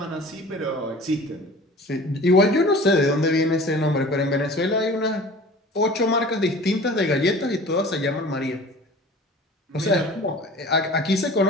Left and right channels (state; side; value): normal; both; correlation 0.42